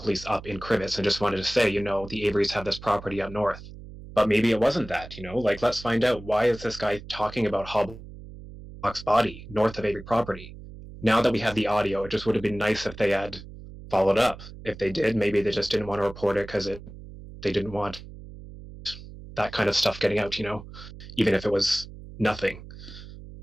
up in Crivets and just wanted to say, the Averys have this property up north. But maybe it wasn't that, let's find out, why is this guy talking about Halbach's body north of Avery property? Now that we have the audio, it just would have been nice if they had followed up. If they did, maybe they just didn't want to report it because they didn't want that kind of stuff getting out, even if it was nothing.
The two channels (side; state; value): right; noise; hum, 15 dB below the sound